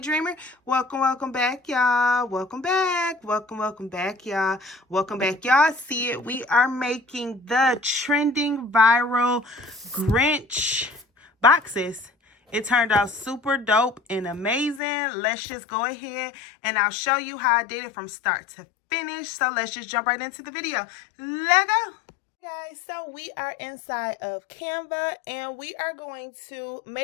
welcome back, y'all. Welcome back, welcome back, y'all. Welcome back, y'all. See it, we are making the trending viral Grinch boxes. It turned out super dope and amazing. Let's just go ahead and I'll show you how I did it from start to finish. So let's just jump right into the video. Let's go. Guys, so we are inside of Canva and we are going to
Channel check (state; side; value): drops out; right; at 14.8 s